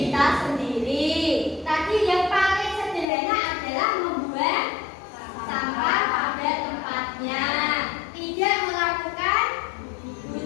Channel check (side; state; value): right; drops out; at 3.1 s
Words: kita sendiri. Tadi yang paling sederhana adalah membuang sampah pada tempatnya, tidak melakukan